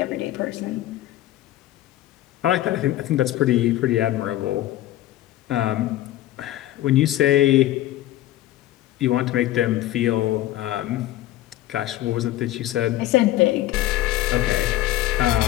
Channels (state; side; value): quieter; right; 14.7 dB